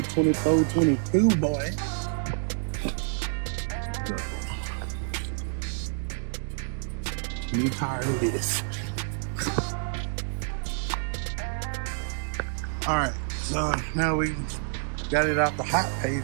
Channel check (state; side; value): silent; left; 59 dB below the other